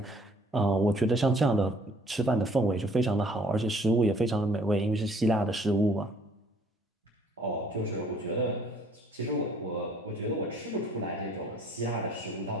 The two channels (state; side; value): normal; both; correlation 0.59